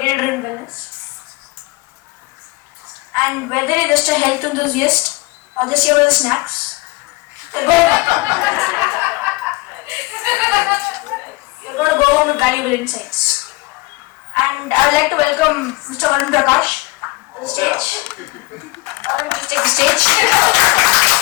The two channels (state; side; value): quieter; right; 23.1 dB